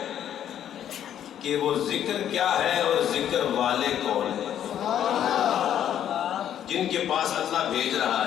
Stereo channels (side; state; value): right; quieter; 10.3 dB